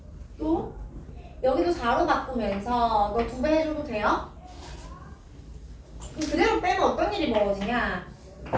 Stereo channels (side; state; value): both; identical; correlation 1.00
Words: 또 여기도 4로 바꾸면서 너 2배 해줘도 돼요. 그럼 그대로 빼면 어떤 일이 벌어지냐.